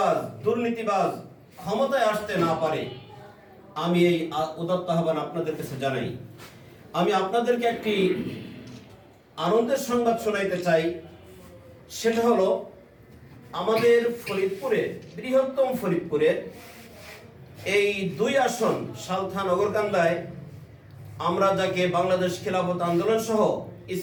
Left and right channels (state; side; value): identical; both; correlation 1.00